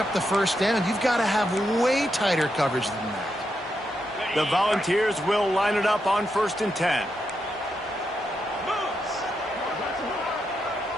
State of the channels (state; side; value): normal; both; correlation 0.83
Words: the first down. You've got to have way tighter coverage than that. The Volunteers will line it up on 1st and 10.